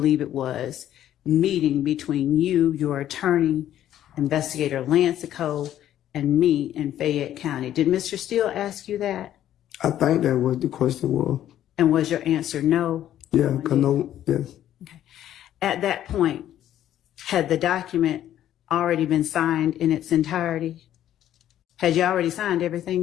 it was, meeting between you, your attorney, Investigator Lancico, and me in Fayette County? Did Mr. Steele ask you that? I think that was the question was. And was your answer no? Yeah, yes. Okay. At that point, had the document already been signed in its entirety? Had you already signed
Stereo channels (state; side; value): quieter; right; 11.7 dB